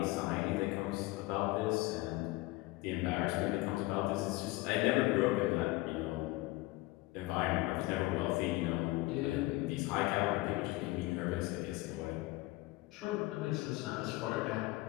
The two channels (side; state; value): right; quieter; 20.4 dB